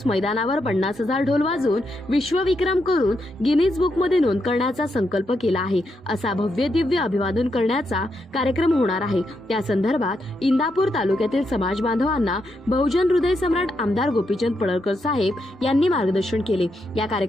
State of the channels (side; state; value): both; normal; correlation 0.82